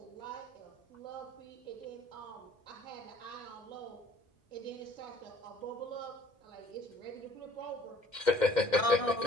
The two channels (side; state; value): right; late; 2.1 ms